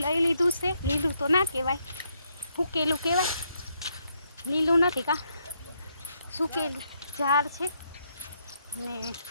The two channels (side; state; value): both; inverted; correlation -0.75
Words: લઈ લીધું છે. લીલું તો ના કહેવાય, સૂકેલું કહેવાય, લીલું નથી કા, સૂકેલું ઝાડ છે અને